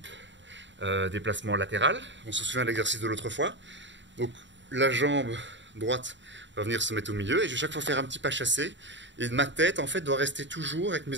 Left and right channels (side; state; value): left; late; 0.53 ms